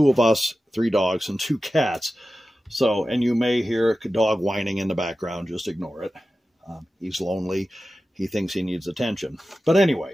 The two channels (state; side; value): normal; both; correlation 0.93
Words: of us, 3 dogs, and 2 cats. So, and you may hear a dog whining in the background, just ignore it. He's lonely. He thinks he needs attention. But anyway,